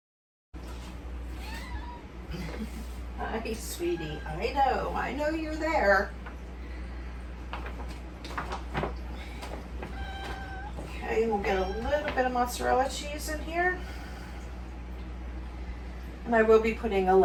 Hi, sweetie. I know you're there. Okay, we'll get a little bit of mozzarella cheese in here. And I will be putting a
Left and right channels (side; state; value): both; identical; correlation 1.00